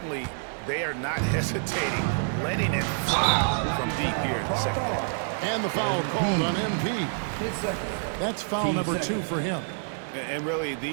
they are not hesitating, letting it fly from deep here in the second half. And the foul called on MP. That's foul number 2 for him. And really,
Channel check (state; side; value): silent; left; digital silence